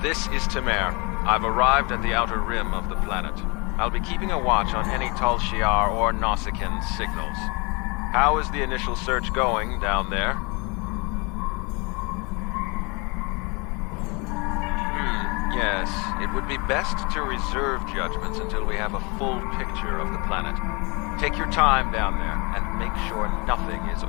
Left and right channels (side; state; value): right; quieter; 29.0 dB